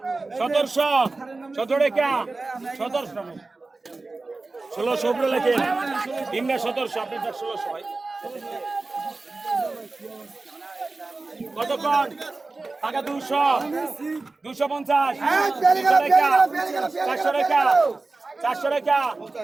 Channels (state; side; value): quieter; left; 3.5 dB